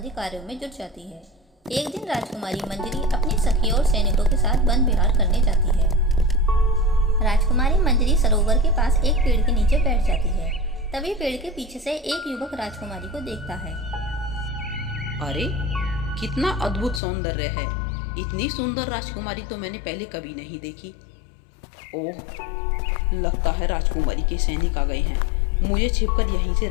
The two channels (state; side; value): drops out; right; at 17.0 s